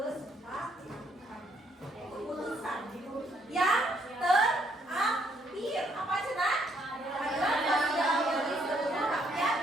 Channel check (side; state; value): both; normal; correlation 0.70